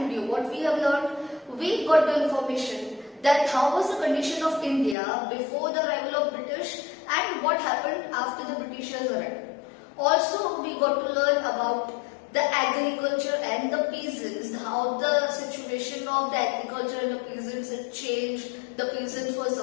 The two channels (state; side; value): drops out; right; at 5.0 s